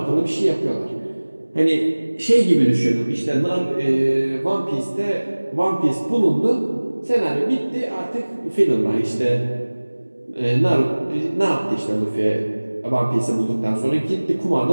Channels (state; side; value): inverted; both; correlation -1.00